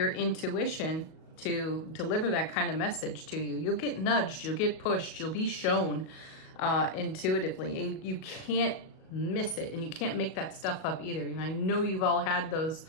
intuition to deliver that kind of message to you. You'll get nudged, you'll get pushed, you'll be shown intuitively. You can't miss it, and you can't make that stuff up either. And I know you've all had those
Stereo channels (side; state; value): right; late; 37 ms